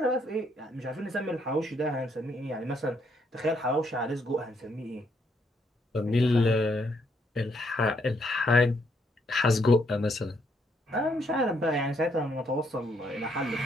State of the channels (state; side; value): normal; both; correlation 0.73